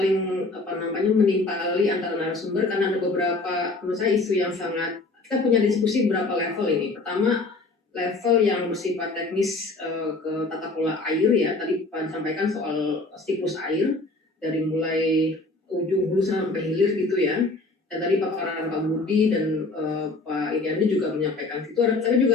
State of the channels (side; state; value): right; quieter; 3.3 dB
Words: menimpali antara narasumber karena ada beberapa menurut saya isu yang sangat, kita punya diskusi berapa level ini. Pertama, level yang bersifat teknis ke tata kelola air ya, tadi Pak sampaikan soal siklus air dari mulai ujung hulu sampai hilir gitu ya. Dan tadi paparan Pak Budi dan Pak Iriandi juga menyampaikan itu. Tapi